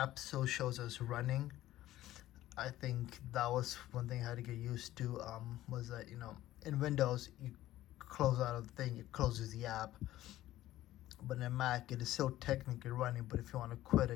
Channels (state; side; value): quieter; right; 14.6 dB